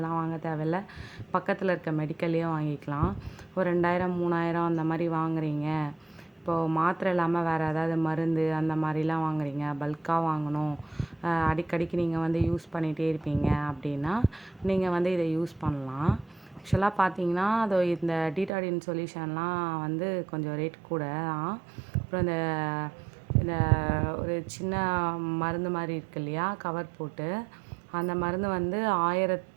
வாங்க தேவையில்ல. பக்கத்தில் இருக்க மெடிக்கல்லையே வாங்கிக்கலாம். ஒரு 2000 3000 அந்த மாதிரி வாங்குறீங்க. இப்போது மாத்திரை இல்லாமல் வேறு ஏதாவது மருந்து அந்த மாதிரிலாம் வாங்குறீங்க, பல்காக வாங்கணும், அடிக்கடிக்கு நீங்கள் யூஸ் பண்ணிகிட்டே இருப்பீங்க அப்படின்னா நீங்கள் இதை யூஸ் பண்ணலாம். ஆக்சுவலாக பார்த்தீங்கன்னா அது இந்த டீடாடின் சொல்யூஷன்லாம் கொஞ்சம் ரேட் கூட தான். அப்புறம் இந்த இந்த ஒரு சின்ன மருந்து மாதிரி இருக்கு இல்லையா, கவர் போட்டு, அந்த மருந்து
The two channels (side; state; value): left; drops out; at 18.5 s